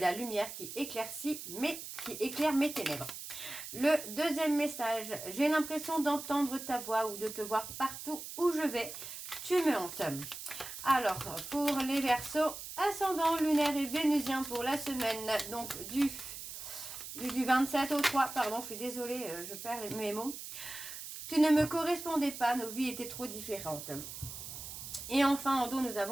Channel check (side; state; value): right; noise; hiss, 10 dB below the sound